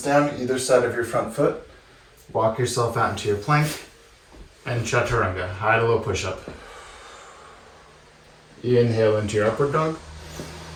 either side of your front foot. Walk yourself out into your plank and chaturanga, high to low push-up. Inhale into your upward dog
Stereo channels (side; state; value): both; identical; correlation 1.00